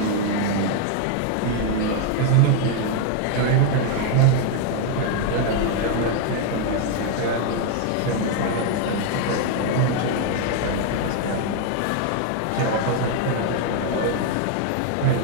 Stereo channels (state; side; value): different; both; correlation 0.00